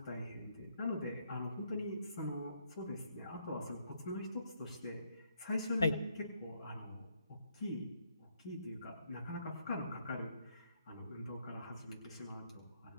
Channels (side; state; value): both; inverted; correlation -0.73